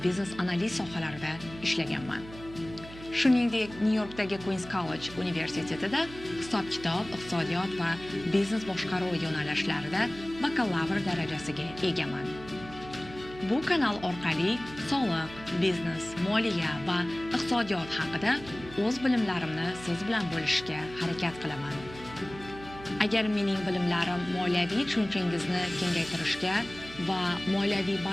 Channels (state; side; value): noise; right; hum, 16 dB below the sound